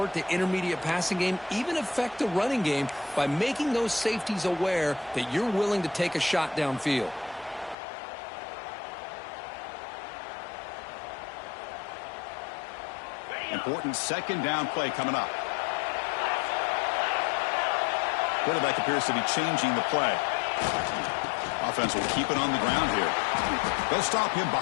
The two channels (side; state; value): right; drops out; at 7.8 s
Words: to intermediate passing game, even affect the running game by making those safeties aware that you're willing to take a shot downfield. Important second down play coming up. Quarterback appears to be changing the play. Offense will keep it on the ground here. They'll stop him